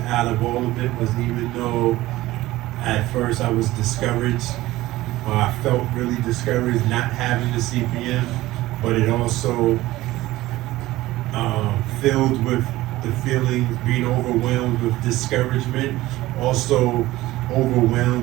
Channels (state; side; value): quieter; left; 17.2 dB